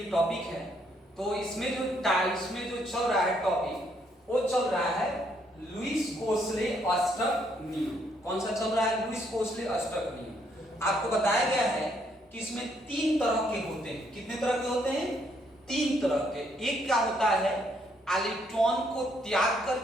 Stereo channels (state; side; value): normal; both; correlation 0.71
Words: टॉपिक है। तो इसमें जो चल रहा है टॉपिक वो चल रहा है लुईस कोसले अष्टक नियम। कौन सा चल रहा है? लुईस कोसले अष्टक नियम। आपको बताया गया है कि इसमें 3 तरह के होते हैं। कितने तरह के होते हैं? 3 तरह के। एक क्या होता है, इलेक्ट्रॉन को त्याग